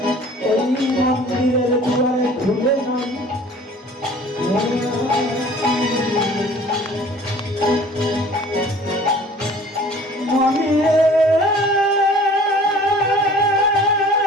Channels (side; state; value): both; normal; correlation 0.49